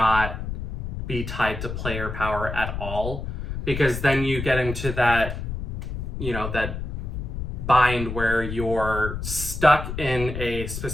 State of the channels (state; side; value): noise; left; rumble, 5 dB below the sound